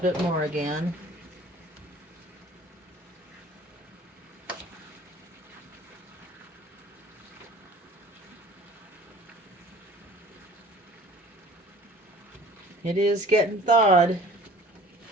more again. It is getting thawed.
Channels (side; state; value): both; normal; correlation 0.48